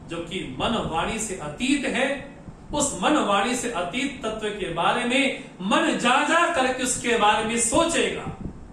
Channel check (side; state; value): both; identical; correlation 1.00